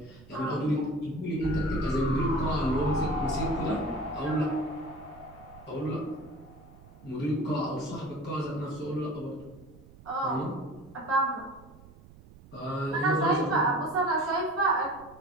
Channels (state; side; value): noise; right; rumble, 22 dB below the sound